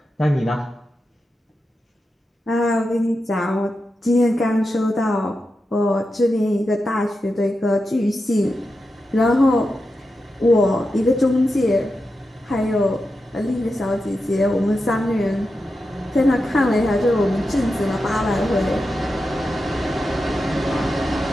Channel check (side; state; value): both; normal; correlation 0.89